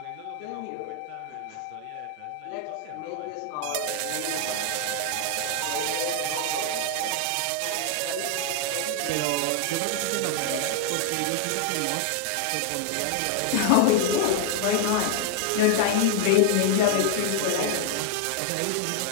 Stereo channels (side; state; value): both; different; correlation 0.00